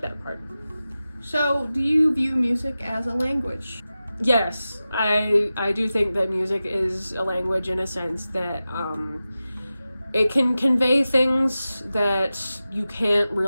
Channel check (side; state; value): both; inverted; correlation -0.94